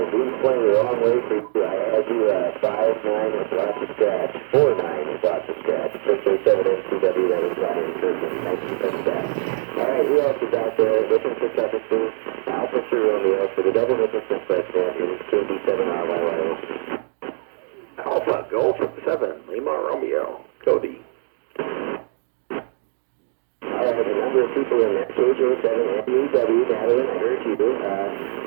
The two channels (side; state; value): left; silent; digital silence